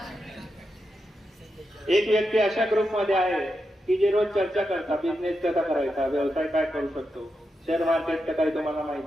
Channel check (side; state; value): both; normal; correlation 0.87